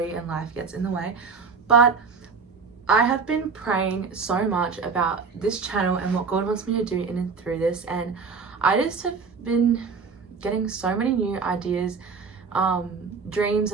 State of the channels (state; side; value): quieter; left; 5.2 dB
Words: and life gets in the way, but I have been praying so much about this channel and what God wants me to do in and through this, and I just have been getting so many new ideas, dreams